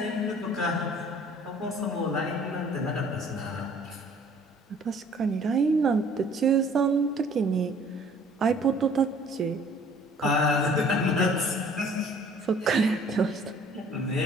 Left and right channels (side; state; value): both; normal; correlation 0.54